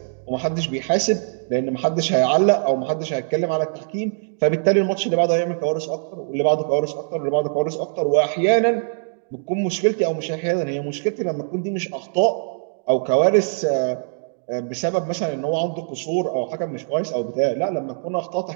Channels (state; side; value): silent; left; digital silence